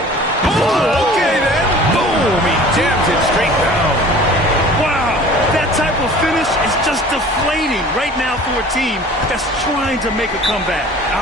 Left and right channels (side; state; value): both; normal; correlation 0.46